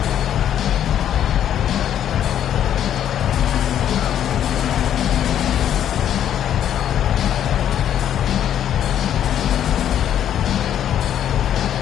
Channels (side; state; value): right; quieter; 10.2 dB